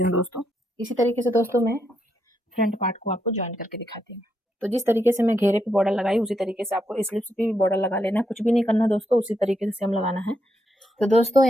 हूँ दोस्तों। इसी तरीके से दोस्तों मैं फ्रंट पार्ट को आपको ज्वाइन करके दिखाती हूँ। तो जिस तरीके से मैं घेरे पे बॉर्डर लगाई, उसी तरीके से आपको स्लिप्स पे भी बॉर्डर लगा लेना है। कुछ भी नहीं करना दोस्तों, उसी तरीके से सेम लगाना है। तो दोस्तों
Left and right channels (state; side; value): normal; both; correlation 0.80